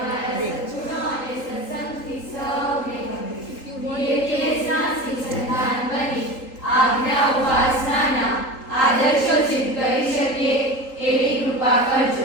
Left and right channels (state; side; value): late; right; 3.8 ms